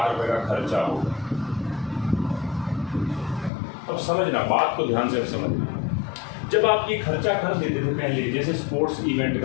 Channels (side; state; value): right; drops out; at 3.5 s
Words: रुपए का खर्चा होगा। अब समझना, बात को ध्यान से समझना। जब आप ये खर्चा कर देते थे पहले, जैसे स्पोर्ट्स इवेंट